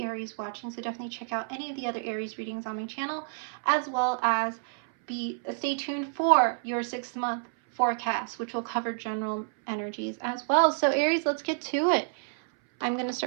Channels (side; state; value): left; silent; 58 dB below the other